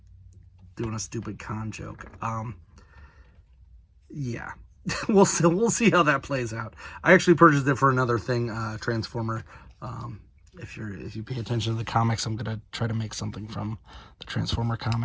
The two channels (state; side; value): identical; both; correlation 1.00